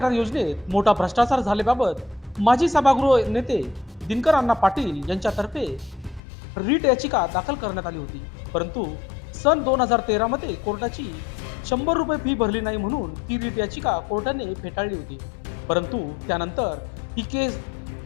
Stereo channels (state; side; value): drops out; right; at 6.2 s